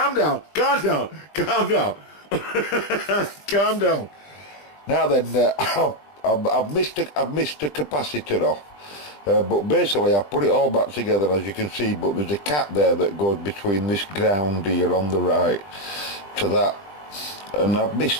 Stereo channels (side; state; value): right; late; 20 ms